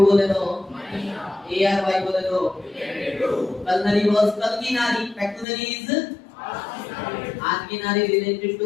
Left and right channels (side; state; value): right; drops out; at 5.5 s